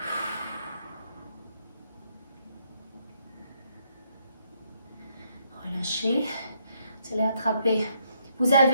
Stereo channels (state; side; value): inverted; both; correlation -0.74